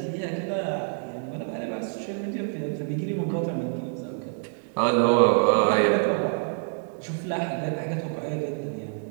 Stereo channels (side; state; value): left; silent; 60 dB below the other